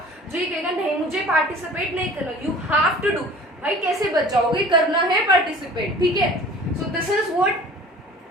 जो ये कहेगा नहीं मुझे पार्टिसिपेट नहीं करना, यू हैव टू डू। भाई कैसे बच जाओगे, करना है पार्टिसिपेट, ठीक है। So this is what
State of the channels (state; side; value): normal; both; correlation 0.45